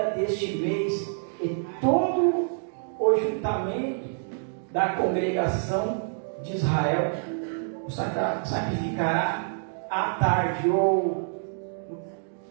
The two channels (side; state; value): left; silent; digital silence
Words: deste mês, e todo o juntamento da congregação de Israel o sacrificará à tarde ou no